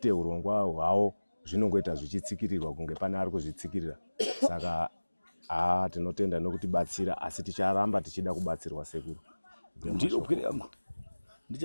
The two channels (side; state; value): both; inverted; correlation -1.00